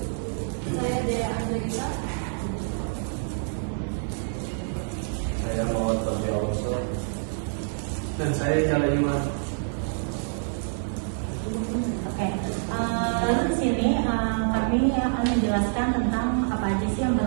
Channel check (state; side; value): silent; left; digital silence